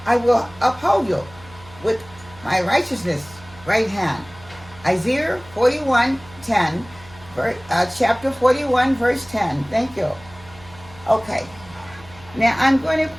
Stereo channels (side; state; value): right; noise; hum, 21 dB below the sound